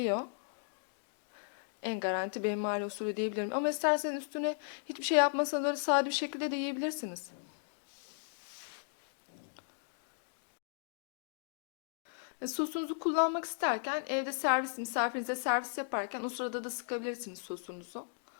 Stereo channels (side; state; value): right; silent; digital silence